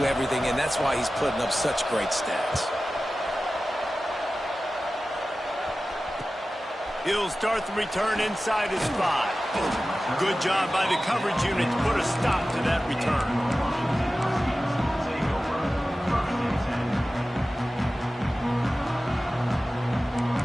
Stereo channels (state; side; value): normal; both; correlation 0.95